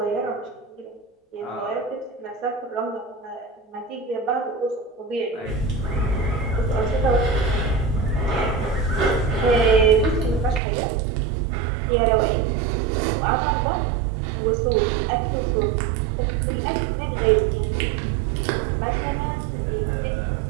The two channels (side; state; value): left; drops out; at 10.6 s